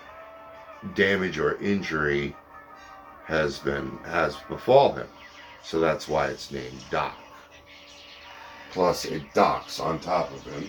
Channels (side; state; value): both; identical; correlation 1.00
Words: damage or injury has befall him. So that's why it's named Doc. Plus, it docks on top of